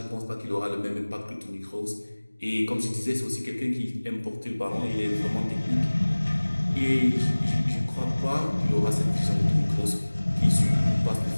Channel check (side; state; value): both; inverted; correlation -1.00